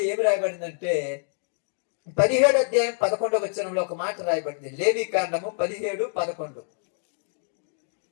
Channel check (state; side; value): silent; right; digital silence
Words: ఏమి రాయబడిందంటే, 17 అధ్యాయం 11వ వచనంలో ఒక మాట రాయబడింది. లేవి కాండము 17:11.